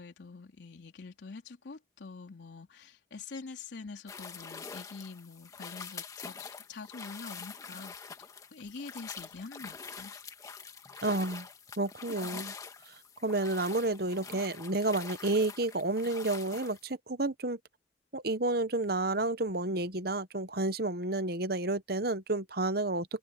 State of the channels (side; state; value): both; normal; correlation 0.04